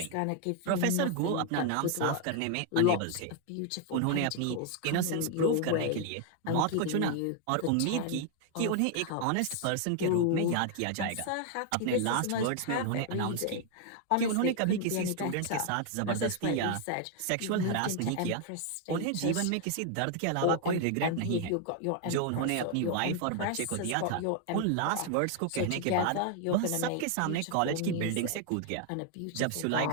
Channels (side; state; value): both; different; correlation 0.00